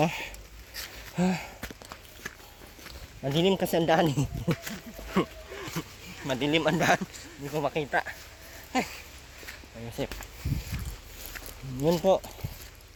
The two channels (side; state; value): both; identical; correlation 1.00